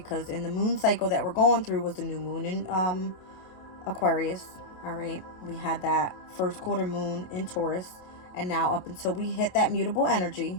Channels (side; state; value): right; late; 28 ms